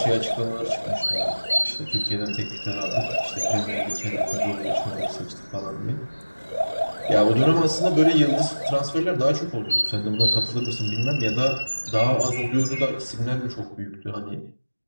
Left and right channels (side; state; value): both; inverted; correlation -1.00